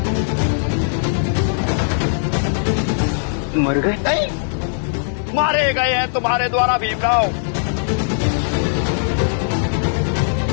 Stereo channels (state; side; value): silent; right; digital silence